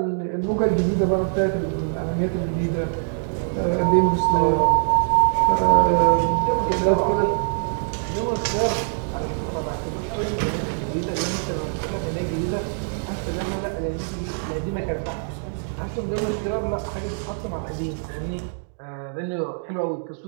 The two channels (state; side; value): silent; left; digital silence